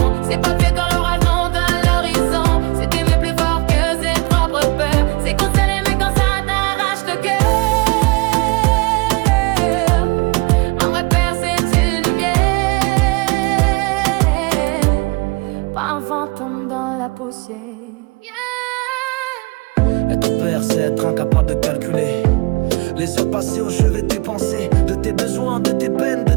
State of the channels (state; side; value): quieter; left; 25.7 dB